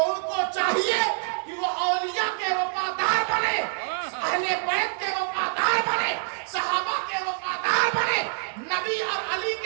ان کو چاہیے کہ وہ اولیاء کے وفادار بنے، اہل بیت کے وفادار بنے، صحابہ کے وفادار بنے، نبی اور علی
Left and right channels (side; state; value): left; silent; 61 dB below the other